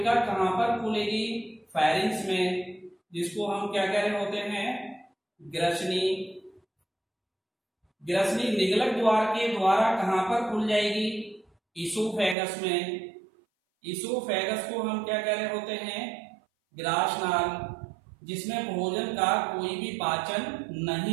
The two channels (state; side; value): drops out; left; at 12.4 s